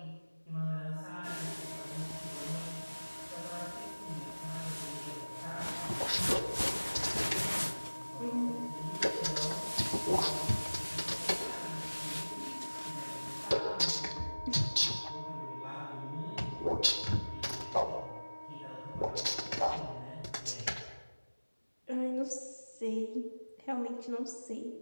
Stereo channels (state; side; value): inverted; both; correlation -1.00